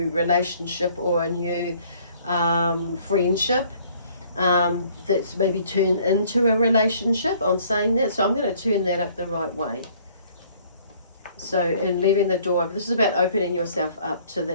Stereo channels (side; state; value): both; inverted; correlation -0.59